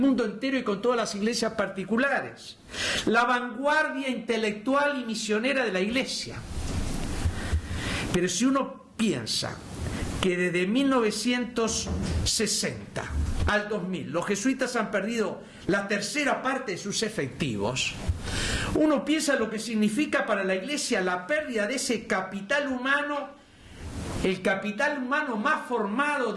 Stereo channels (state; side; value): identical; both; correlation 1.00